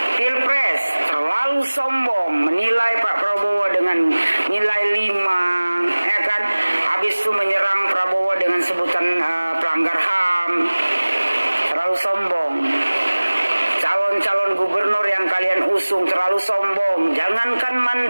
Pilpres terlalu sombong, menilai Pak Prabowo dengan nilai 5, ya kan? Habis itu menyerang Prabowo dengan sebutan pelanggar HAM. Terlalu sombong. Calon-calon gubernur yang kalian usung terlalu sombong. Jangankan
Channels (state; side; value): inverted; both; correlation -1.00